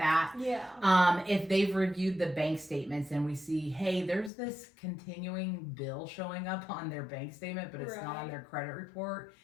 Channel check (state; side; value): drops out; right; at 4.3 s